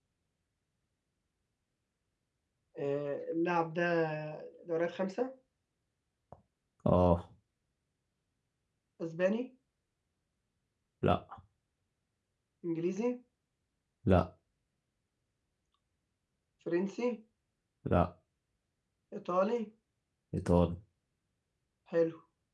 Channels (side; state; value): both; identical; correlation 1.00